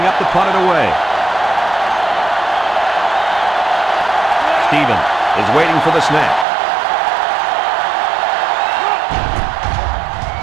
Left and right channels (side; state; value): left; drops out; at 6.5 s